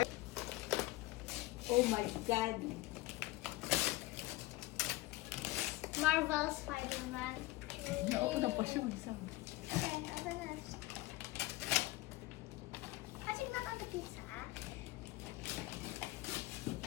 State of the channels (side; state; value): right; quieter; 19.3 dB